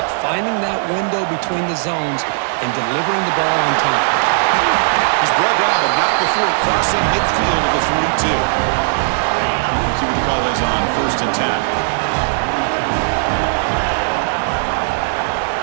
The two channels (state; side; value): silent; left; 68 dB below the other